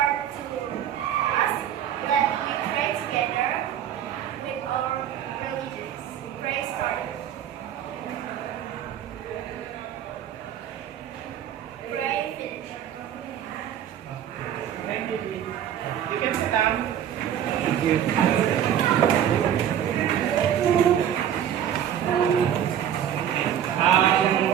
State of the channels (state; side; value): quieter; left; 10.0 dB